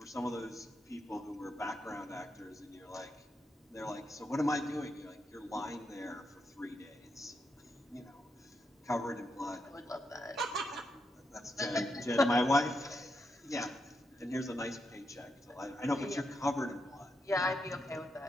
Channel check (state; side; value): normal; both; correlation 0.83